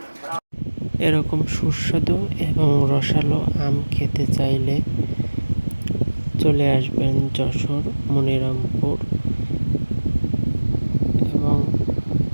এরকম সুস্বাদু এবং রসালো আম খেতে চাইলে চলে আসবেন যশোর মনিরামপুর এবং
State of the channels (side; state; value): both; inverted; correlation -1.00